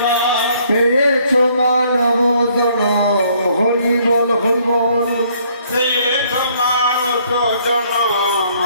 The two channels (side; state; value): both; inverted; correlation -0.65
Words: পেয়েছ মানব জনম হরি বল হরি বল পেয়েছ মানুষ জনম